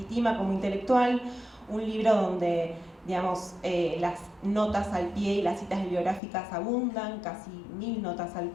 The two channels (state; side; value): drops out; right; at 6.2 s